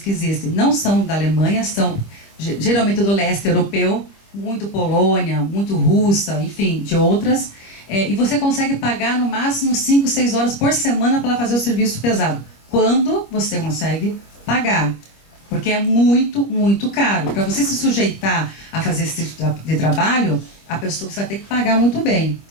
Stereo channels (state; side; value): late; right; 25 ms